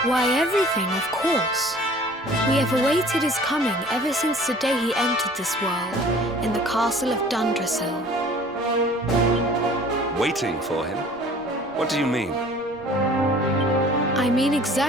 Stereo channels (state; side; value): noise; right; rumble, 27 dB below the sound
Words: Why, everything, of course. We have awaited his coming ever since the day he entered this world in the castle of Dundrasil. Waiting for him? What do you mean? I mean